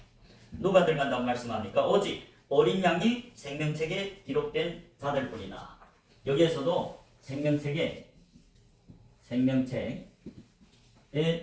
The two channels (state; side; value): identical; both; correlation 1.00